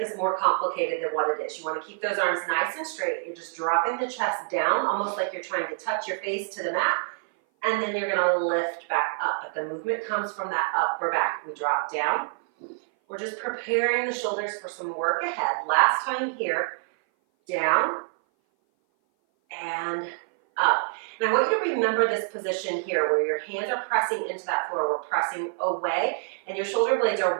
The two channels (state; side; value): silent; left; 57 dB below the other